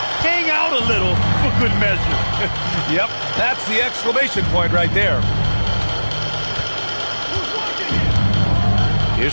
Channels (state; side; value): inverted; both; correlation -1.00